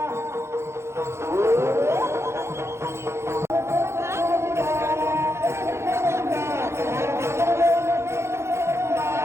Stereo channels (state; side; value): late; left; 0.13 ms